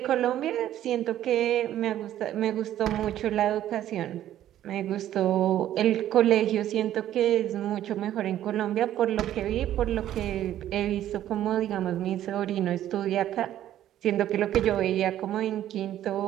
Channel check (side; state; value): left; quieter; 12.1 dB